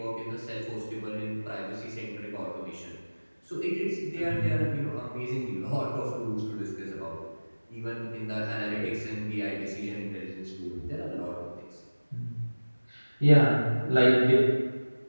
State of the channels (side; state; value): both; inverted; correlation -1.00